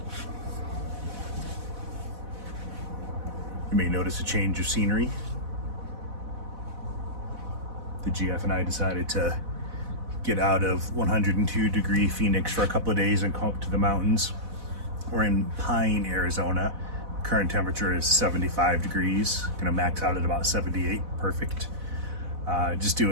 You may notice a change of scenery. The GF and I decided to get out of 102 degree Phoenix for a couple of days and come up to the mountains. We're in Pine, Arizona. Current temperature is 75 degrees. Gonna max out at about 78, perfect. Just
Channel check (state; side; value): late; left; 4.0 ms